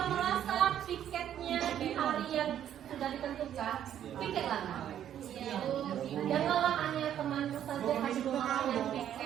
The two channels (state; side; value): quieter; left; 10.4 dB